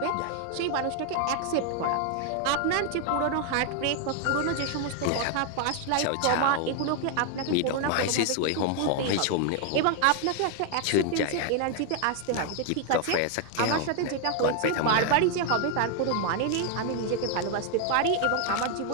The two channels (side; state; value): both; different; correlation 0.00